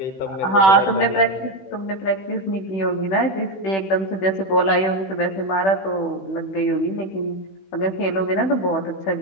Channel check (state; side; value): late; right; 16 ms